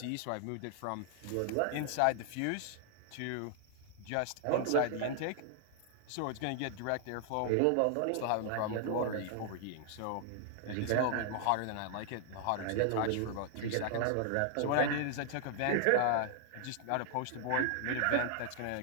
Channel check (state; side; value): different; both; correlation 0.00